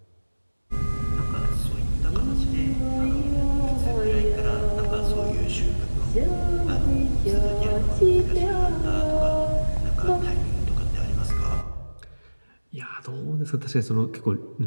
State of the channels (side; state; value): both; inverted; correlation -1.00